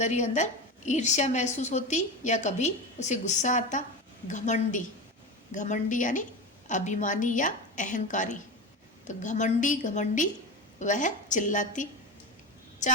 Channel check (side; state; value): both; normal; correlation 0.23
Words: ही अंदर ईर्ष्या महसूस होती या कभी उसे गुस्सा आता। घमंडी यानी अभिमानी या अहंकारी। तो घमंडी वह चिल्लाती।